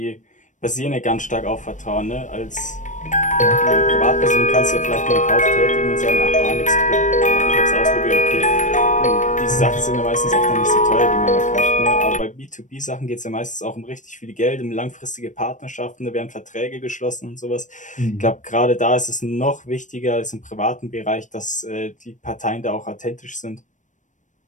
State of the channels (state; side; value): late; right; 0.36 ms